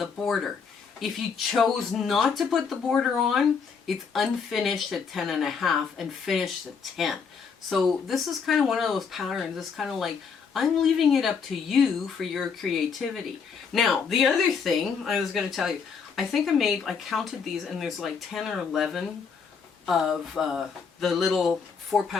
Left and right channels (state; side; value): quieter; right; 5.9 dB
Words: border. If you chose not to put the border on, it's unfinished at 10.5 and finished at 10. So this is kind of one of those patterns. It's kind of like, I'm leaving it up to you for your creativity. Now, the other thing I was going to tell you, I think I counted these, and there's like 10 or 11 of the little